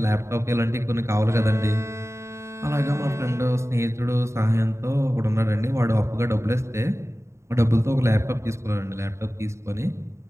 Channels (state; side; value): late; left; 0.14 ms